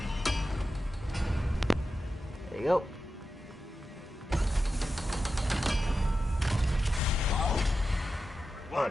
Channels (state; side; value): normal; both; correlation 0.91